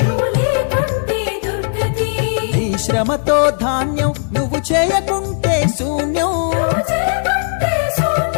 నీ శ్రమతో ధాన్యం, నువ్వు చేయకుంటే శూన్యం.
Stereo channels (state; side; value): silent; right; 68 dB below the other